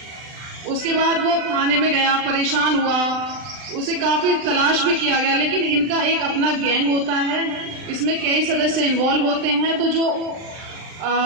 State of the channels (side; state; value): left; late; 39 ms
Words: उसके बाद वो थाने में गया, परेशान हुआ, उसे काफी तलाश भी किया गया। लेकिन इनका एक अपना गैंग होता है, इसमें कई सदस्य इन्वॉल्व होते हैं, तो जो